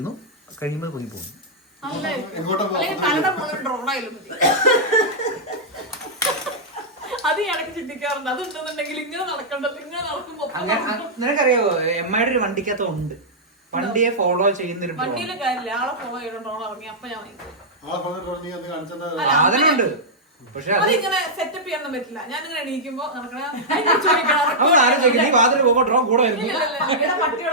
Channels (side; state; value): both; normal; correlation -0.09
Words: കഴിയുമ്പോൾ പൊങ്ങി പോകുന്നു. എങ്ങോട്ടാ അത് ഇടയ്ക്ക് ചിന്തിക്കാറുണ്ട്. അതുണ്ടെന്നുണ്ടെങ്കിൽ ഇങ്ങനെ നടക്കണ്ടത്, ഇങ്ങനെ നടക്കുമ്പോ നിനക്കറിയാവോ എമ്മയുടെ ഒരു വണ്ടിക്കകത്ത് ഉണ്ട്. വണ്ടിയെ ഫോളോ ചെയ്യുന്നൊരു വണ്ടിയിലെ കാര്യമില്ല, ആളെ ഫോളോ ചെയ്തോണ്ടോ ഇറങ്ങി അപ്പൊ ഞാൻ സാധനമുണ്ട്. പക്ഷെ അതിങ്ങനെ സെറ്റപ്പ് ചെയ്യാനൊന്നും പറ്റില്ല. ഞാനിങ്ങനെ എണീക്കുമ്പോ നടക്കണ